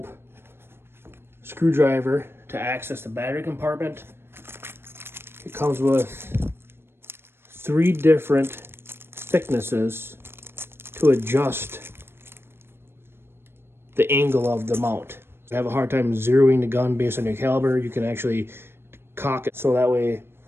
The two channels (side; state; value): left; late; 0.11 ms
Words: screwdriver to access the battery compartment. It comes with 3 different thicknesses to adjust the angle of the mount. If you have a hard time zeroing the gun based on your caliber, you can actually cock it so that way